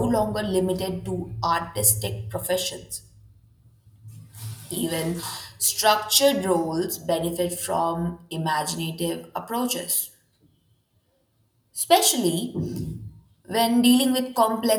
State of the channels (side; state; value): both; identical; correlation 1.00